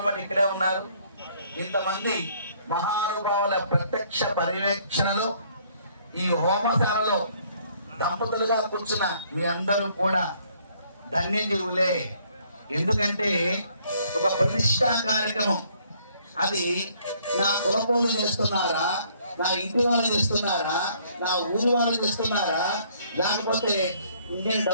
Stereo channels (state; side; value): inverted; both; correlation -0.63